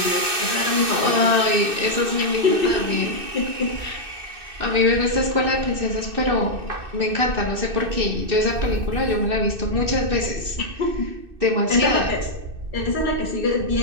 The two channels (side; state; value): left; late; 2.6 ms